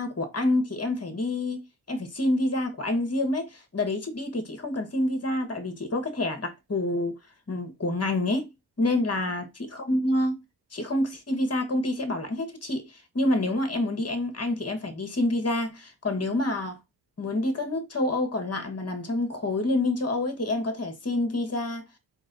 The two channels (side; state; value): both; normal; correlation 0.53